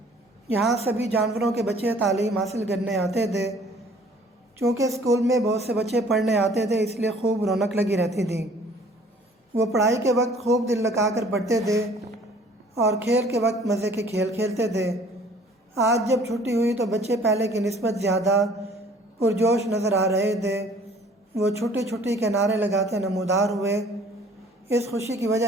یہاں سبھی جانوروں کے بچے تعلیم حاصل کرنے آتے تھے۔ چونکہ اسکول میں بہت سے بچے پڑھنے آتے تھے، اس لیے خوب رونق لگی رہتی تھی۔ وہ پڑھائی کے وقت خوب دل لگا کر پڑھتے تھے اور کھیل کے وقت مزے کے کھیل کھیلتے تھے۔ آج جب چھٹی ہوئی تو بچے پہلے کی نسبت زیادہ پرجوش نظر آ رہے تھے۔ وہ چھٹی چھٹی کے نعرے لگاتے نمودار ہوئے۔ اس خوشی کی وجہ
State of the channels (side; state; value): both; normal; correlation 0.54